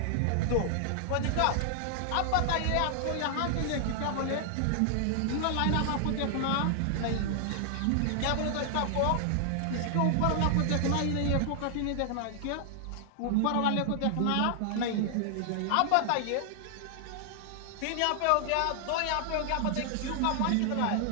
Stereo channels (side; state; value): both; different; correlation 0.00